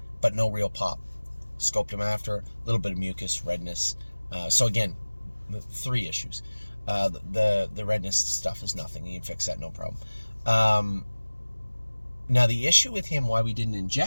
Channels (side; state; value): both; inverted; correlation -1.00